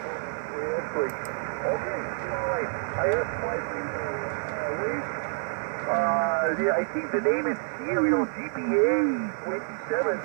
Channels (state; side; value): silent; left; digital silence